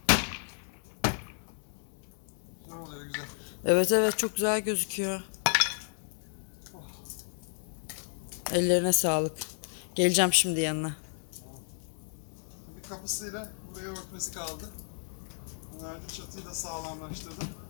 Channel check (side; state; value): right; silent; digital silence